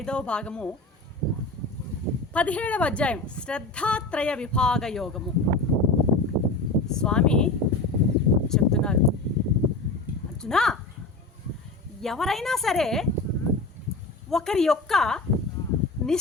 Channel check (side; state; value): right; quieter; 3.2 dB